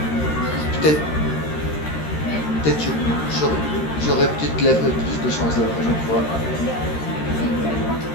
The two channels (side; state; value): right; late; 13 ms